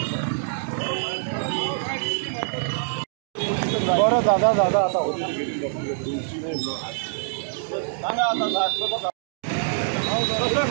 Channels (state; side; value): silent; left; digital silence